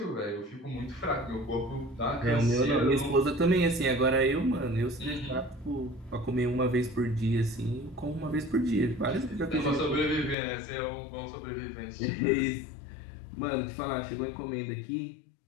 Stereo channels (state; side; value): drops out; right; at 10.4 s